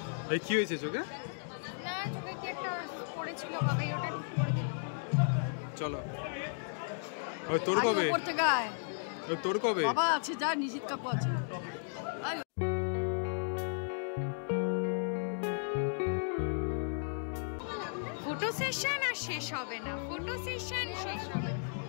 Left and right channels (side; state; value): right; silent; digital silence